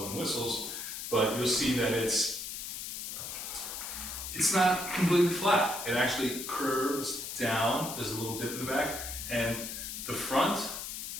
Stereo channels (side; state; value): left; noise; hiss, 6 dB below the sound